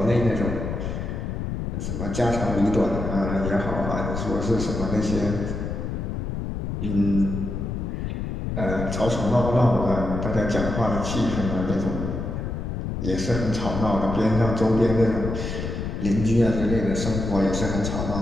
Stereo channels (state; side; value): noise; left; rumble, 4 dB below the sound